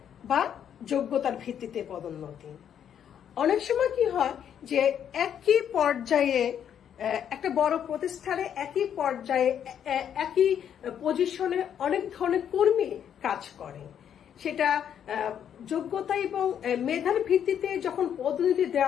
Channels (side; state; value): right; quieter; 9.0 dB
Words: বা যোগ্যতার ভিত্তিতে পদোন্নতি। অনেক সময় কি হয় যে একই পর্যায়ে একটা বড় প্রতিষ্ঠানে একই পর্যায়ে একই পজিশনে অনেক ধরনের কর্মী কাজ করে, সেটা যোগ্যতা এবং মেধার ভিত্তিতে যখন পদোন্নতি